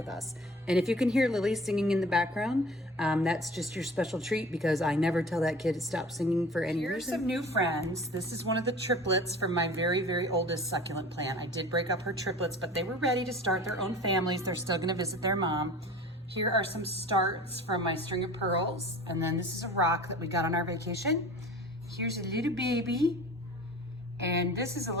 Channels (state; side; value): normal; both; correlation 0.41